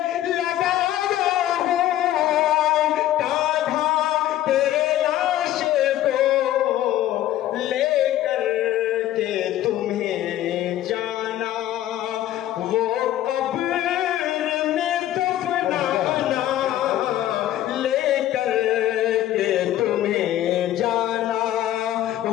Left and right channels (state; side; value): quieter; right; 13.2 dB